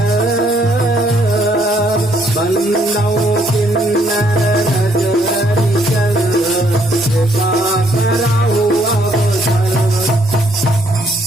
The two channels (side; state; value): both; normal; correlation 0.68